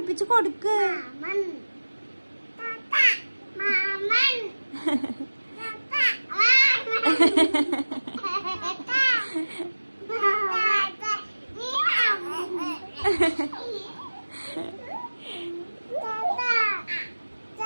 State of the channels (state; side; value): inverted; both; correlation -1.00